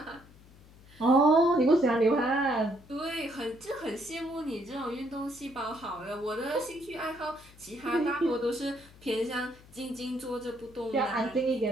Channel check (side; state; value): left; noise; hum, 23 dB below the sound